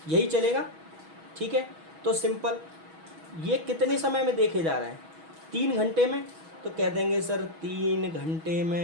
यही चलेगा। ठीक है, तो सिंपल ये कितने समय में देखे जा रहे हैं, 3 घंटे में। तो कह देंगे सर 3 घंटे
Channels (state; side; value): late; left; 6.2 ms